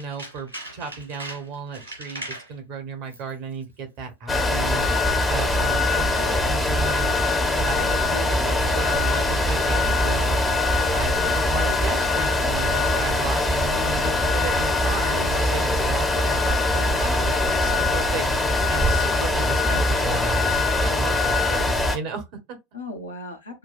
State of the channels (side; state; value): both; normal; correlation 0.67